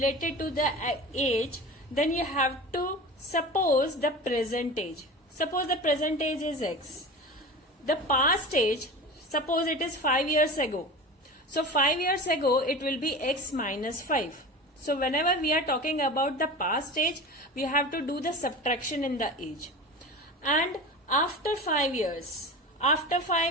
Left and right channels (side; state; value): both; normal; correlation 0.32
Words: to the age, then you have to suppose the present age. Suppose the present age is x. The past age, suppose it is 5 years ago. So 5 years ago it will be x minus 5. So whenever we are talking about the past age, we have to do the subtraction in the age. And after 5 years